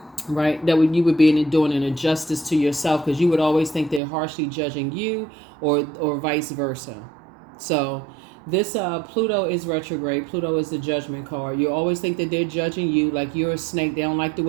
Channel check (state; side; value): drops out; left; at 4.0 s